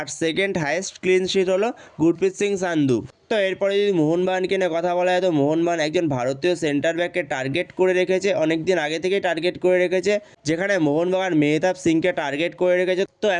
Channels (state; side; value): identical; both; correlation 1.00